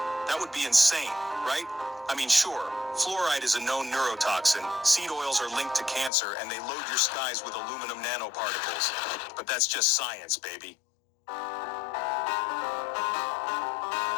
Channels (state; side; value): drops out; right; at 6.1 s